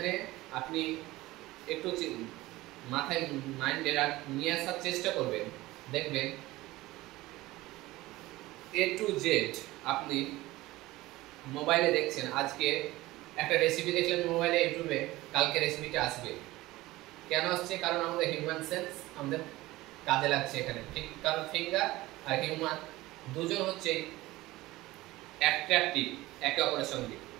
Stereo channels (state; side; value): quieter; left; 18.5 dB